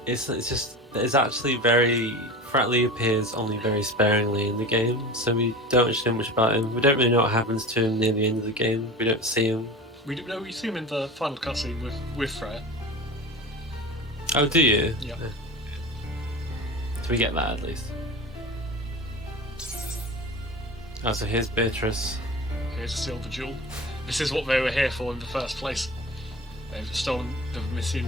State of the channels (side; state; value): both; normal; correlation 0.32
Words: actually very. Fretley appears only very sparingly in the game, so we don't actually know much about him. We don't really know what happens to him near the end of the game. We don't see him. We see him in the final cutscene with Freya. Oh, do you? Yeah. Do we get that at least? Oh, so here's Beatrice. Here's a silver jewel. This is what they were here for in the first place. They've stolen the